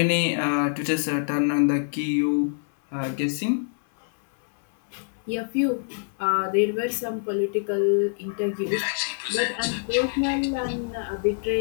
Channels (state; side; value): silent; right; 58 dB below the other